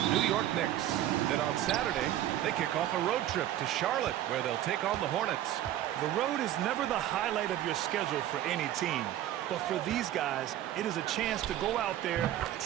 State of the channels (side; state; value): left; quieter; 12.7 dB